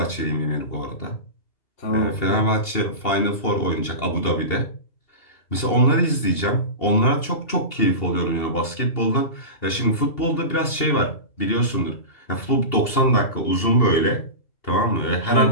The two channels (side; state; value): right; late; 2.7 ms